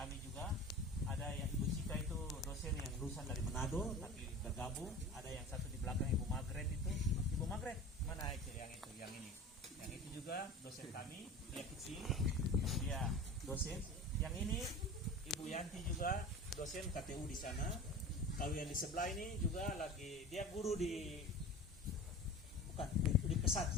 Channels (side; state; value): both; normal; correlation 0.36